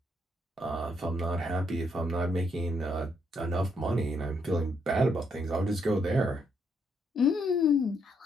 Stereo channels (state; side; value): normal; both; correlation 0.75